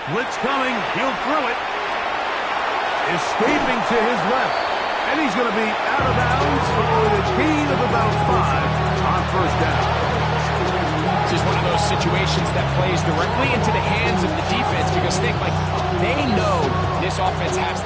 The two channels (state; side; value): identical; both; correlation 1.00